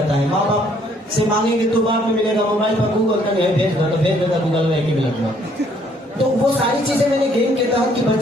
है। माँ बाप से मांगेंगे तो बाद में मिलेगा, मोबाइल पर गूगल का भेज देगा गूगल में एक ही मिनट में। तो वो सारी चीजें मैंने गेम के तहत कि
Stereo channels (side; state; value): both; normal; correlation 0.64